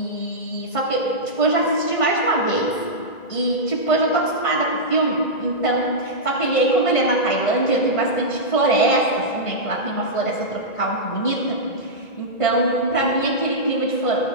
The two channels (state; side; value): late; right; 1.9 ms